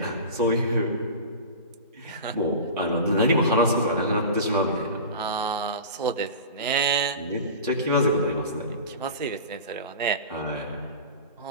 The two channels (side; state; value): both; inverted; correlation -0.32